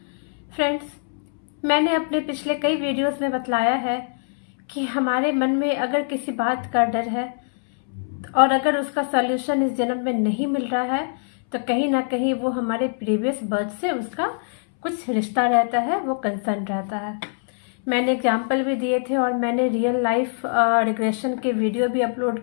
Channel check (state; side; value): silent; right; 63 dB below the other